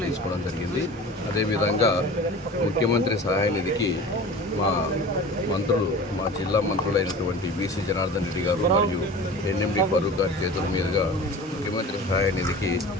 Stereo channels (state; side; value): normal; both; correlation 0.37